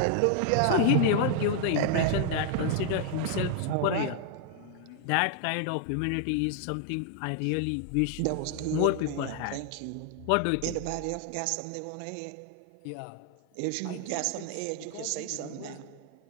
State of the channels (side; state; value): both; different; correlation 0.00